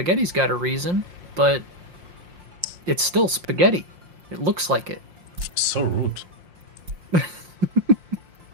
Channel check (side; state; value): left; late; 5.7 ms